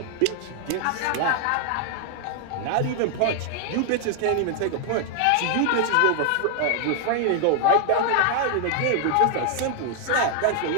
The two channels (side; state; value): both; different; correlation 0.00